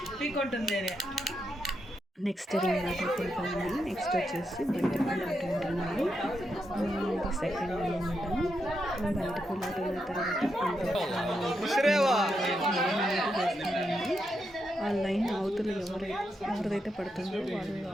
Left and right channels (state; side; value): normal; both; correlation 0.83